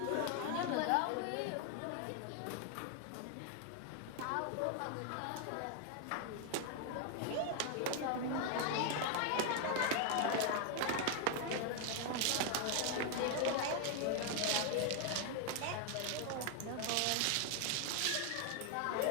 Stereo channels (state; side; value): different; both; correlation 0.00